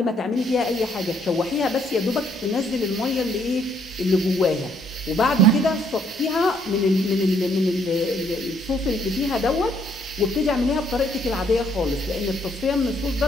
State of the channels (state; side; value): normal; both; correlation 0.68